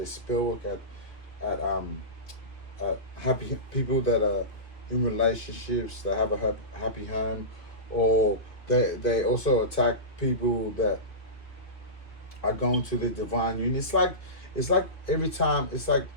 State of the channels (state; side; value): late; right; 2.6 ms